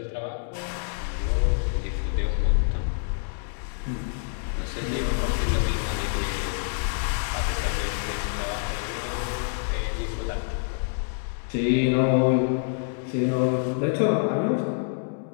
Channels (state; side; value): silent; right; digital silence